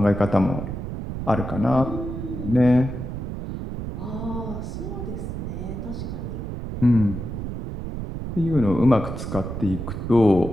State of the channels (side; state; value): right; noise; rumble, 6 dB below the sound